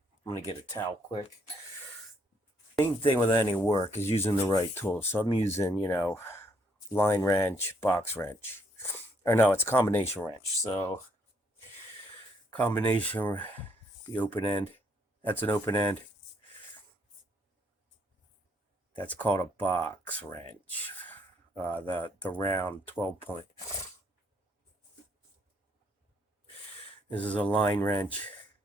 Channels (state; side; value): normal; both; correlation 0.69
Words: I'm going to get a towel quick. Main thing with any work is using the right tool. So I'm using, line wrench, box wrench. Or no, it's combination wrench. So combination, the open end. That's an open end. That's called a box wrench. The round 12-point. This is a line wrench,